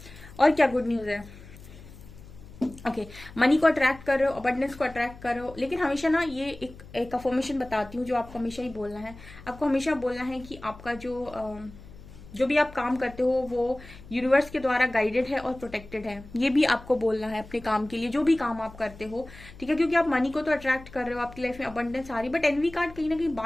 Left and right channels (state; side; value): noise; left; hum, 18 dB below the sound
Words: और क्या गुड न्यूज है? ओके, मनी को अट्रैक्ट कर रहे हो, अबंडेंस को attract कर रहे हो, लेकिन हमेशा ना ये एक अफर्मेशन बताती हूँ जो आपको हमेशा ही बोलना है। आपको हमेशा बोलना है कि आपका जो भी आप काम करते हो वो यूनिवर्स के द्वारा गाइडेड है और प्रोटेक्टेड है। ये भी आपको बोलना है अपने काम के लिए, जो भी काम आप करते हो, ठीक है। क्योंकि आप मनी को तो अट्रैक्ट कर रहे हो, आपकी लाइफ में अबंडेंस आ रही, बट एनवी कार्ड कहीं ना कहीं